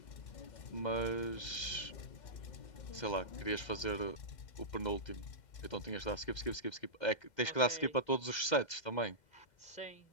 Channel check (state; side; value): late; right; 2.1 ms